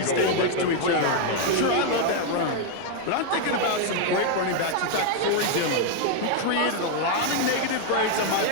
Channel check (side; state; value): both; different; correlation 0.00